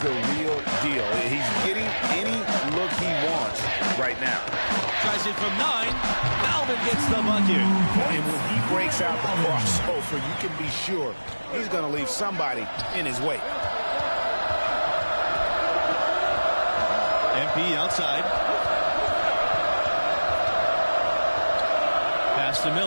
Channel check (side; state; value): both; inverted; correlation -1.00